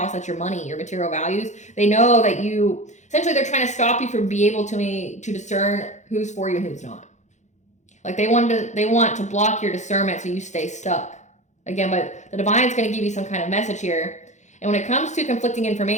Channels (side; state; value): right; late; 0.34 ms